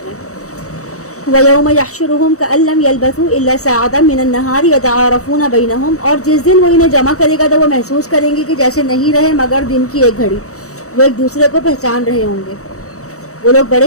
رہے ہیں۔ وَيَوْمَ يَحْشُرُهُمْ كَأَن لَّمْ يَلْبَثُوا إِلَّا سَاعَةً مِّنَ النَّهَارِ يَتَعَارَفُونَ بَيْنَهُمْ، اور جس دن وہ انہیں جمع کرے گا تو وہ محسوس کریں گے کہ جیسے نہیں رہے مگر دن کی ایک گھڑی، وہ ایک دوسرے کو پہچان رہے ہوں گے۔ وہ لوگ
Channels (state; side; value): late; right; 0.65 ms